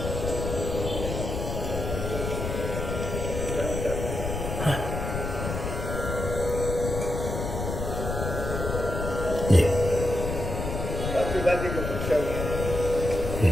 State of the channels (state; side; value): noise; left; rumble, 4 dB below the sound